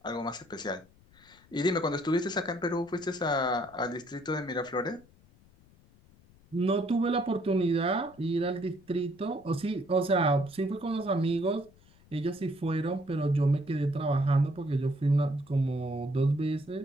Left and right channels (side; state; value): left; noise; rumble, 28 dB below the sound